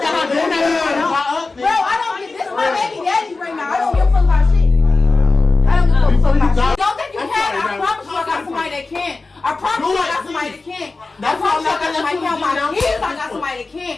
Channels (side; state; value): right; quieter; 3.7 dB